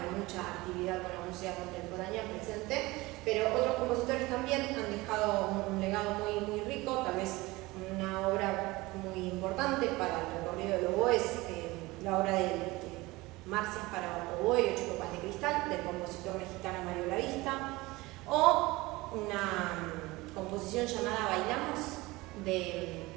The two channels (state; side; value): quieter; left; 21.2 dB